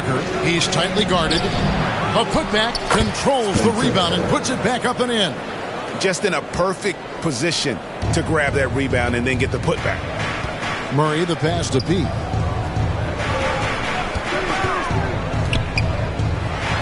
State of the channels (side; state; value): both; identical; correlation 1.00